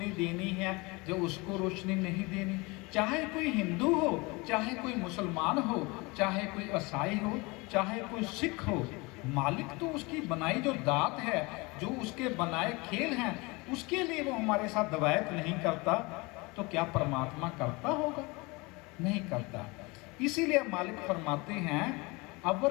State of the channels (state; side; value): quieter; right; 25.7 dB